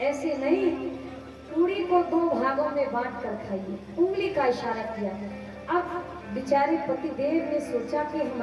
ऐसे नहीं, पूरी को 2 भागों में बांट कर खाइए। उंगली का इशारा किया। अब बेचारे पतिदेव ने सोचा कि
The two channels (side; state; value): both; identical; correlation 1.00